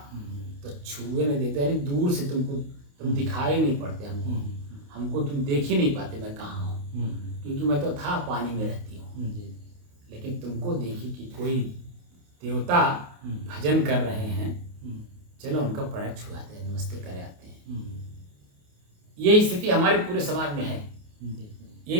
तो छुए नहीं देते, यानी दूर से तुम दिखाई नहीं पड़ते हमको तुम देख ही नहीं पाते मैं कहाँ हूँ, क्योंकि मैं तो था पानी में रहती हूँ। लेकिन तुमको देखी कि कोई देवता भजन कर रहे हैं, चलो उनका पैर छुआते हैं, नमस्ते करे आते हैं। ये स्थिति हमारे पूरे समाज में है। यही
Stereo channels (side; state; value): left; late; 28 ms